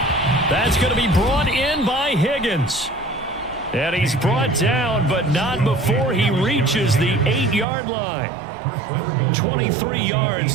That's going to be brought in by Higgins. And he's brought down, but not before he reaches the 8-yard line. 23 yards,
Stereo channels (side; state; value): left; drops out; at 7.7 s